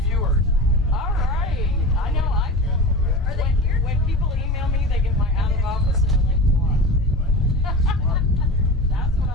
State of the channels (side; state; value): both; normal; correlation 0.30